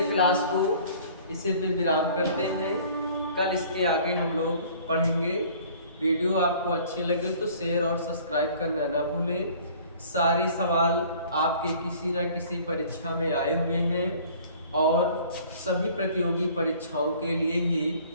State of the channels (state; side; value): inverted; both; correlation -0.51